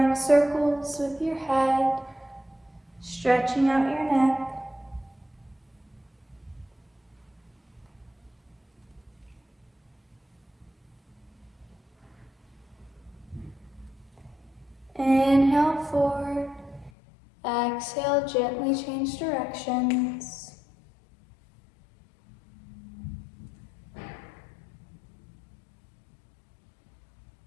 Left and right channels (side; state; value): right; drops out; at 16.9 s